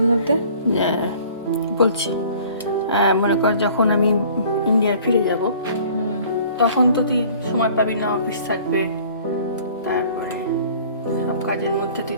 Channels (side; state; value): both; inverted; correlation -0.51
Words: মধ্যে? বলছি, মনে কর যখন আমি ইন্ডিয়ায় ফিরে যাব তখন তো তুই সময় পাবি না, অফিস থাকবে, তারপরে সব কাজের মধ্যে তুই